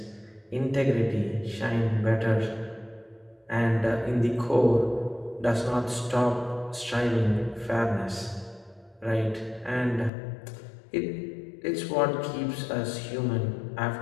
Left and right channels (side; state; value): right; drops out; at 10.1 s